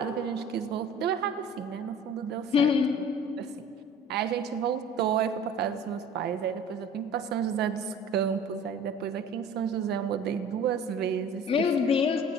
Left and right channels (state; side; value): normal; both; correlation 0.44